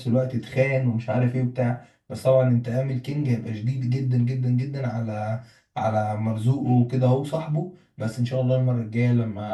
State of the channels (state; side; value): identical; both; correlation 1.00